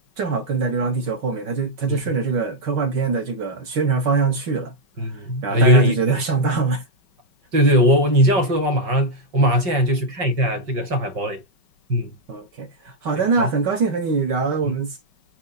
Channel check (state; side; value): late; left; 5.3 ms